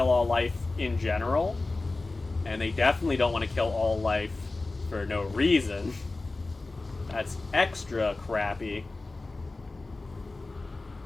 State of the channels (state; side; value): quieter; right; 3.3 dB